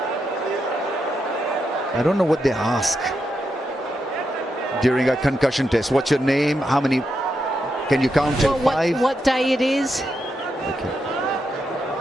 I don't know what they ask during a concussion test. What's your name? How many? Can you count till 5? What day it is? Okay.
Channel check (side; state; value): both; normal; correlation 0.84